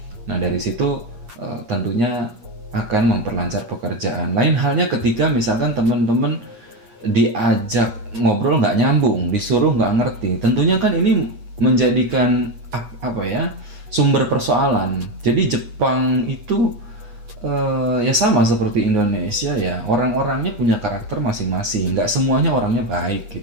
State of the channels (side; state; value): left; late; 8.4 ms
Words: Nah dari situ tentunya akan memperlancar pekerjaan. Lain halnya ketika misalkan teman-teman diajak ngobrol nggak nyambung, disuruh nggak ngerti, tentunya kan ini menjadikan sumber persoalan. Jadi Jepang itu ya sama seperti Indonesia ya, orang-orangnya punya karakter masing-masing, nggak semuanya orangnya baik